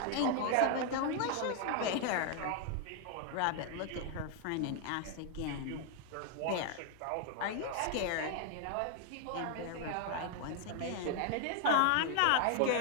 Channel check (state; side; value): different; both; correlation 0.00